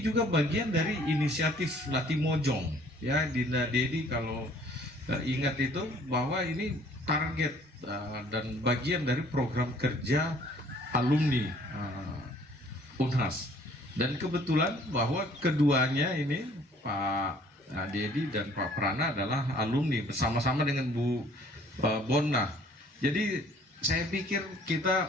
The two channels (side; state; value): both; normal; correlation 0.57